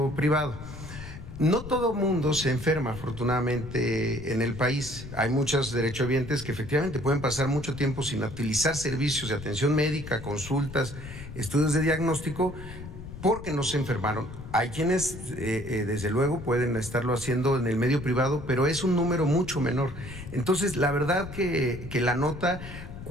privado. No todo mundo se enferma, afortunadamente, en el país. Hay muchos derechohabientes que efectivamente pueden pasar mucho tiempo sin utilizar servicios de atención médica, consultas, estudios de diagnóstico, porque no se enfermaron. Hay quienes, desde luego, pueden estarlo haciendo en el medio privado, pero es un número mucho menor. Entonces, la verdad que la nota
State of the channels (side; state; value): left; noise; rumble, 12 dB below the sound